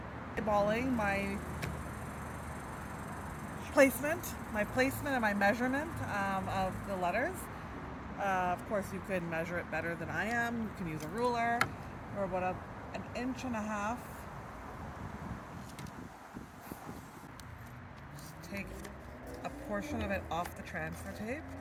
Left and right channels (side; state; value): both; identical; correlation 1.00